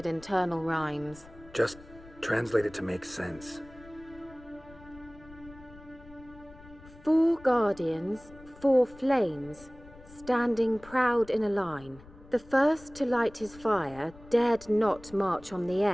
internal rhymes. Just translate it to make sense. 4 guardians, 4 flames, standing proud in a line. The first to light his fire dared not march on the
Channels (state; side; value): noise; left; rumble, 21 dB below the sound